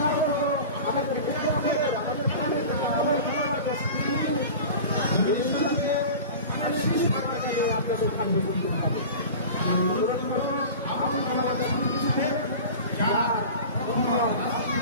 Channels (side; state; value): both; inverted; correlation -0.35